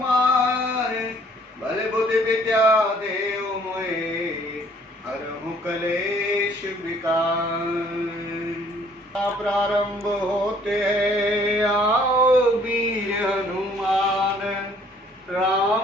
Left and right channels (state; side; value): normal; both; correlation 0.59